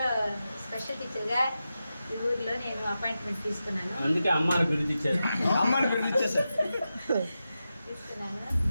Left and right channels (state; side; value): inverted; both; correlation -0.91